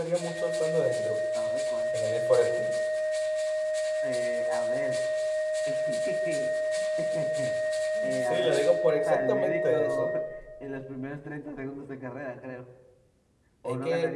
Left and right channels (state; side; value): identical; both; correlation 1.00